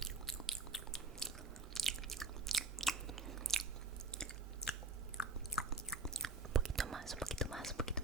Un poquito más, un poquito más, un poquito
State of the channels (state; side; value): quieter; left; 3.5 dB